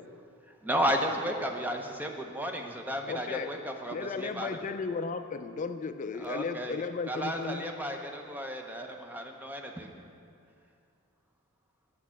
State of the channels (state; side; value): normal; both; correlation 0.36